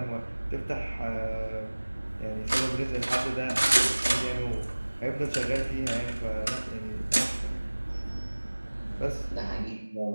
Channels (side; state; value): both; inverted; correlation -1.00